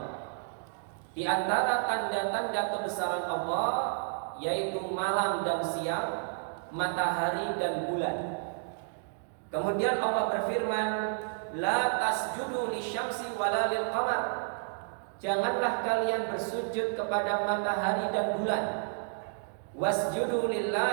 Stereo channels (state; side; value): silent; left; digital silence